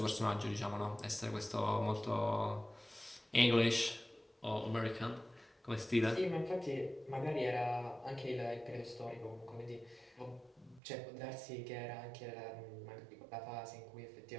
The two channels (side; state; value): left; drops out; at 10.8 s